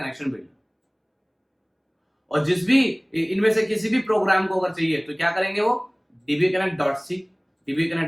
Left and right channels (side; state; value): both; identical; correlation 1.00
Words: बिल्ड। और जिस भी इनमें से किसी भी प्रोग्राम को अगर चाहिए तो क्या करेंगे, वो dbconnect.c